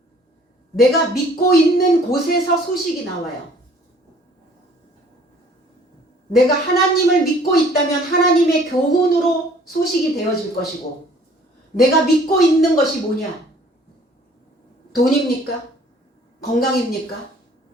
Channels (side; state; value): both; normal; correlation 0.55